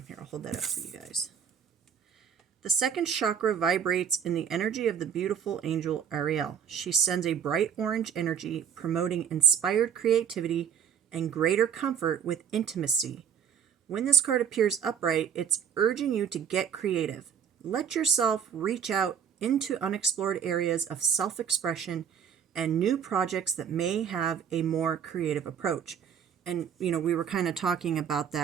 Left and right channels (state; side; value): quieter; left; 8.1 dB